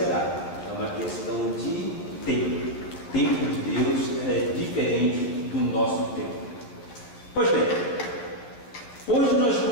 É uma questão de tempo. O tempo de Deus é diferente do nosso tempo. Pois bem, hoje nós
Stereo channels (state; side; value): late; right; 12 ms